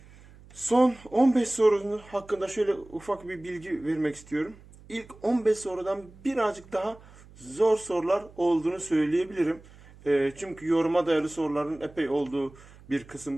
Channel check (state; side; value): noise; right; hum, 23 dB below the sound